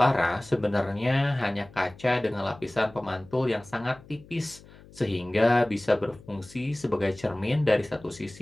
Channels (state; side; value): noise; left; hum, 22 dB below the sound